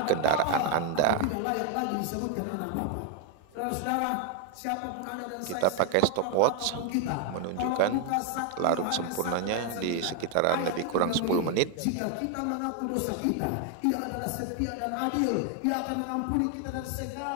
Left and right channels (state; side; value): different; both; correlation 0.01